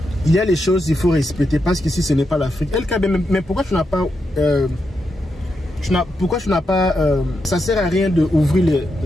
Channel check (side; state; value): both; normal; correlation 0.85